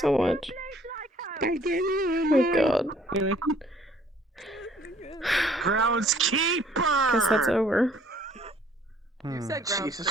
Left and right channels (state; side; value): normal; both; correlation 0.59